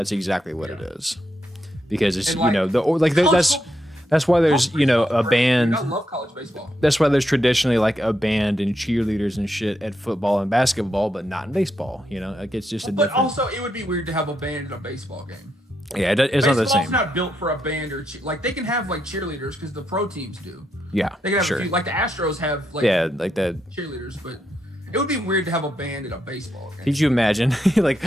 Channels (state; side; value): normal; both; correlation 0.81